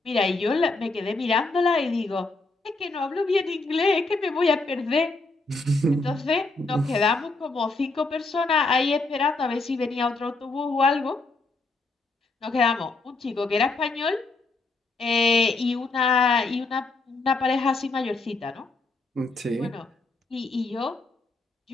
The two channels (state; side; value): quieter; right; 3.5 dB